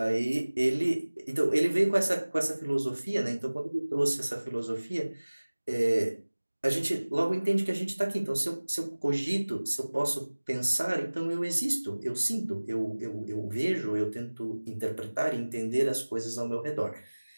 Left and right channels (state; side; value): inverted; both; correlation -1.00